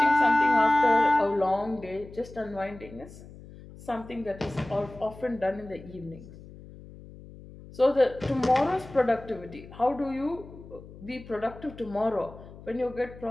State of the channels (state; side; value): noise; left; hum, 18 dB below the sound